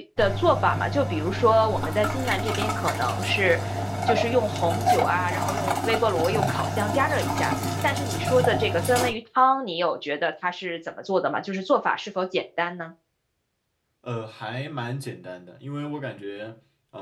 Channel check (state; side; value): identical; both; correlation 1.00